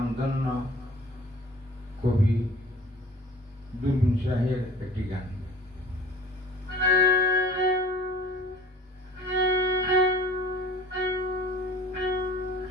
কবি দুরবিন শাহের একটি গান।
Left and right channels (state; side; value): normal; both; correlation 0.47